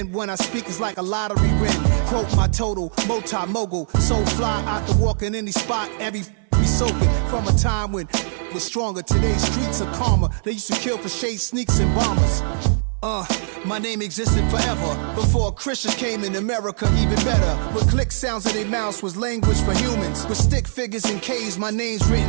when I speak is like a lottery win. Quote my total, multi-mogul. So fly out to walk in any spot, every be soaking from a time when it was stronger. Today's streets are calmer. They used to kill for shade sneaks and bombers. My name existed forever. Before Christians came in America, even better. With click sounds in their mouths was language for humans. With stick figures and K's, my name's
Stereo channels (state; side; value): silent; left; digital silence